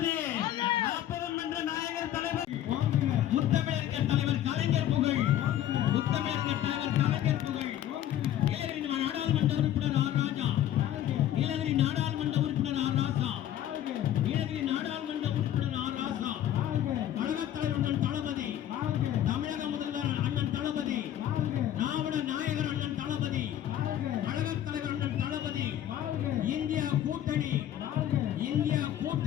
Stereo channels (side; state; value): right; quieter; 11.6 dB